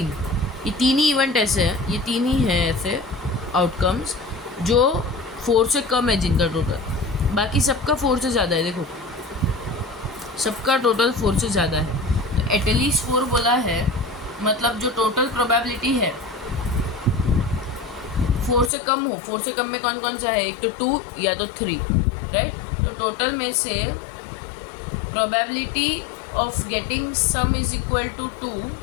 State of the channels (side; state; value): right; drops out; at 18.7 s